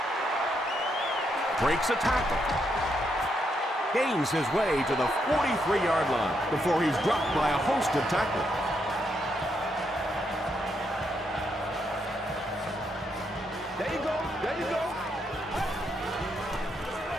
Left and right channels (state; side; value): normal; both; correlation 0.78